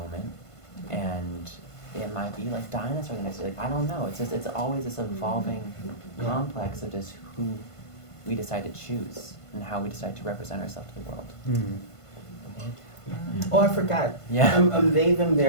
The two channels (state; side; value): late; right; 1.5 ms